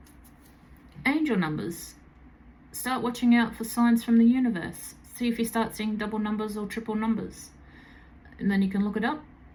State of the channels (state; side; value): identical; both; correlation 1.00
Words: angel numbers. Start watching out for signs from the universe. See if you start seeing double numbers or triple numbers. And then you can look it up